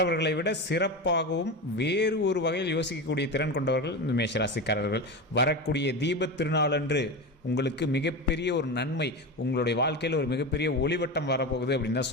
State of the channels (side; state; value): both; normal; correlation 0.22